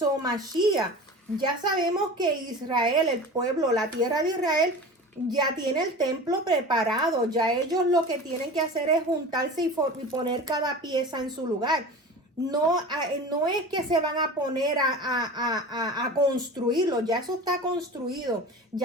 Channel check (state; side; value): normal; both; correlation 0.34